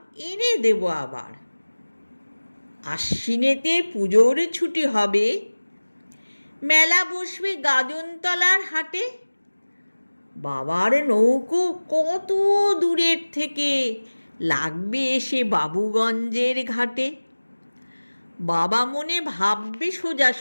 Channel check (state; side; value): inverted; both; correlation -1.00